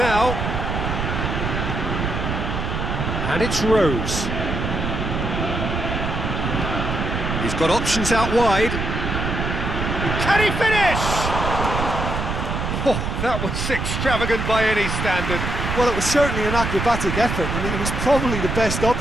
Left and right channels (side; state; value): right; noise; rumble, 2 dB below the sound